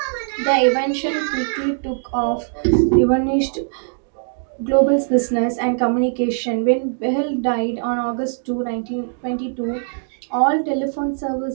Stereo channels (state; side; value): silent; left; digital silence